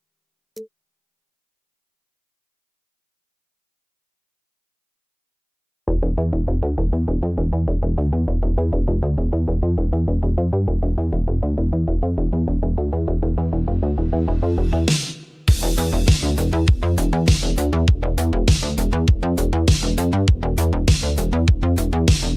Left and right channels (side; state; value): both; identical; correlation 1.00